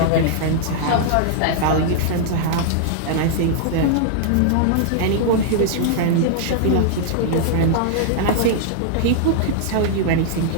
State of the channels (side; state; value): both; different; correlation -0.01